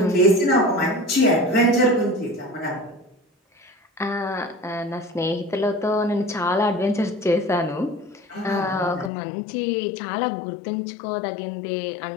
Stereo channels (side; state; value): right; drops out; at 9.1 s